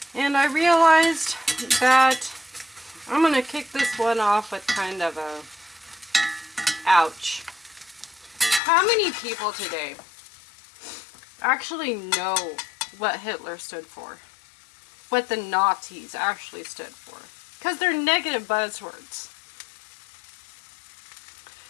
And I realized that I'm going to kick this one off with kind of a ouch. How many people today actually know what Hitler stood for? What the Nazis actually stood for? Because they're negative buzzwords.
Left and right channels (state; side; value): drops out; right; at 8.6 s